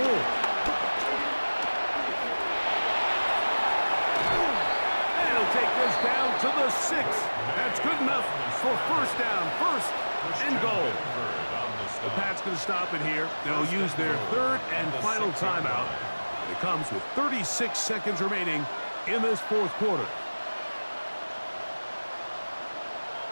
more. And he'll take this down to the 6. That's good enough for first down, 1st and goal. The Pats going to stop it here. They'll use their 3rd and final timeout. It comes with 36 seconds remaining in this 4th quarter.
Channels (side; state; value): both; inverted; correlation -1.00